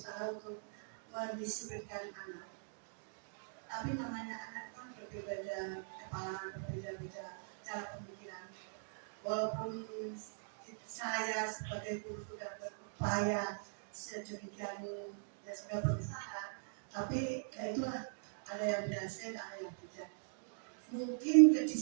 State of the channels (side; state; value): left; silent; digital silence